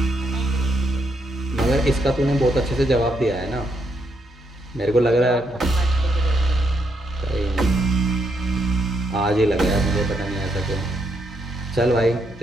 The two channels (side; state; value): both; normal; correlation 0.77